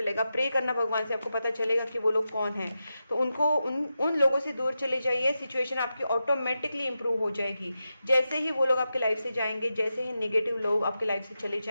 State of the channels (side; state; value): both; inverted; correlation -0.89